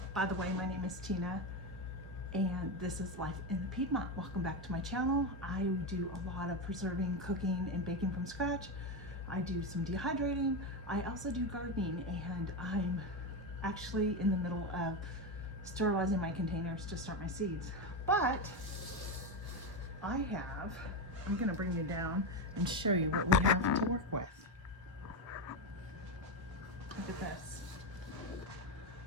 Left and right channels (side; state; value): both; normal; correlation 0.12